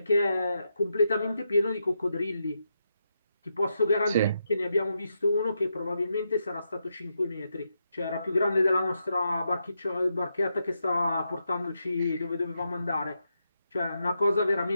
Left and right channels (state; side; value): inverted; both; correlation -0.83